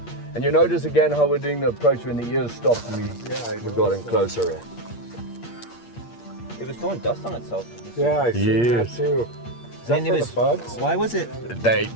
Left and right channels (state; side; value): late; right; 8.6 ms